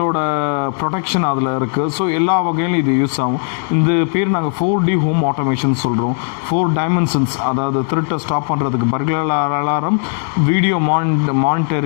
ப்ரொடெக்ஷன் அதில் இருக்குது. ஸோ எல்லா வகையிலும் இது யூஸ் ஆகும். இந்த பேர் நாங்கள் 4D ஹோம் ஆட்டோமேஷன் சொல்கிறோம். 4 டைமென்ஷன்ஸ், அதாவது திருட்டை ஸ்டாப் பண்ணுறதுக்கு பர்க்லர் அலாரம், வீடியோ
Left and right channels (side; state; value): right; silent; 68 dB below the other